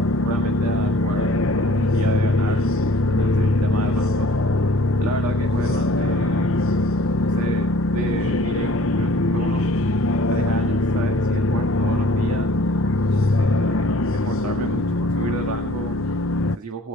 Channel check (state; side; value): normal; both; correlation 0.52